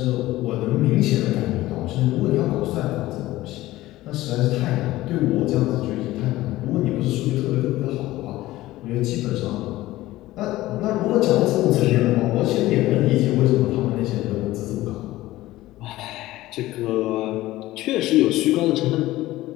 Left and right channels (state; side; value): quieter; right; 16.8 dB